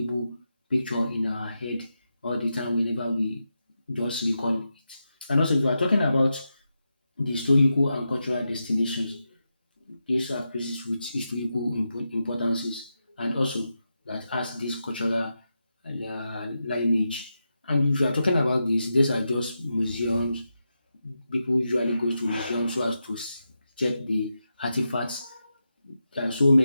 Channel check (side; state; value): both; inverted; correlation -0.88